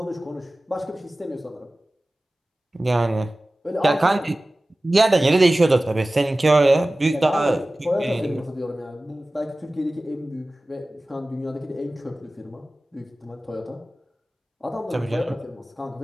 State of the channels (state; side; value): normal; both; correlation 0.97